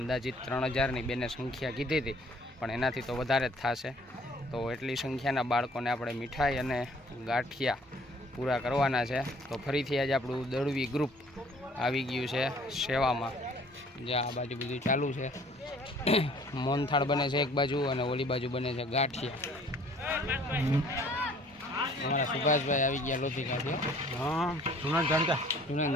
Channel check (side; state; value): both; normal; correlation 0.56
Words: 3000ની બેને સંખ્યા કીધી હતી, પણ એનાથી તો વધારે જ થશે। તો એટલી સંખ્યાના બાળકોને આપણે મીઠાઈ અને ગાંઠિયા પૂરા કરવાના છે। તો ફરીથી આજે આપણું દળવી ગ્રુપ આવી ગયું છે સેવામાં। જે આ બાજુ બધું ચાલુ છે, મોહનથાળ બને છે એક બાજુ અને ઓલી બાજુ બને છે ગાંઠિયા। અમારા સુભાષભાઈ આવી ગયા લોધિકાથી। હા, જૂના જાણીતા।